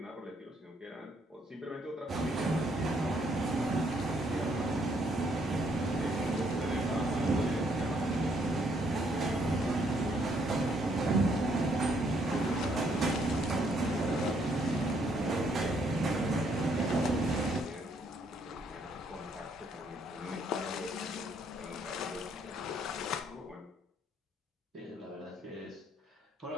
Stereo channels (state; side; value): normal; both; correlation 0.70